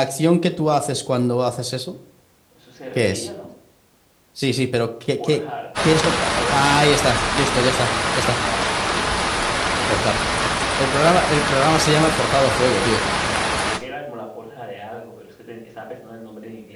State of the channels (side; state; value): both; identical; correlation 1.00